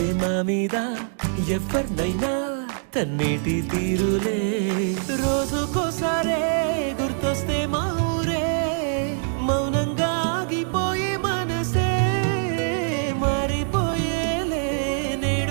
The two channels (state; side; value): silent; left; digital silence